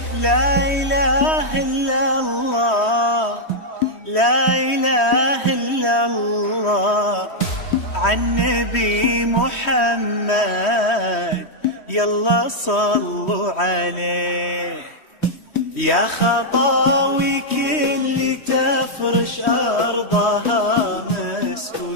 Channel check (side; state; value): right; late; 3.1 ms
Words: لا إله إلا الله، لا إله إلا الله، عن نبي محمد يلا صلوا عليه. يا خطاوي كل تفرش أرضها مسك